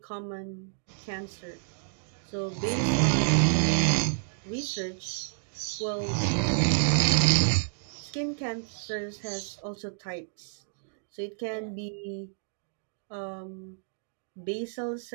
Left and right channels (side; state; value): left; silent; digital silence